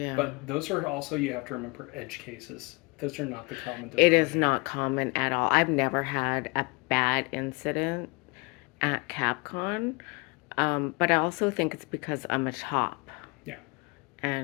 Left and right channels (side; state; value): right; quieter; 28.5 dB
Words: But those are also, you have to remember, edge cases. Those are not the common denominator. It is not common at all. I've never had a bad incident at Capcon, but I also think it's because I'm a top. Yeah.